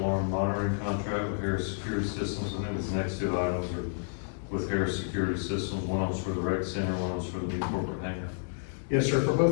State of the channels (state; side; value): silent; right; 58 dB below the other